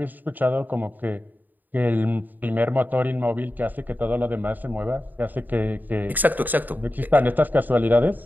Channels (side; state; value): left; late; 0.086 ms